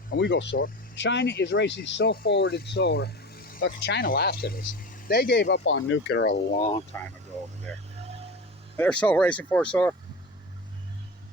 And we go solar. China is racing so forward in solar. Look, China laughs at us. They gave up on nuclear a long time ago over there. They're so racing for solar.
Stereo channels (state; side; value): normal; both; correlation 0.29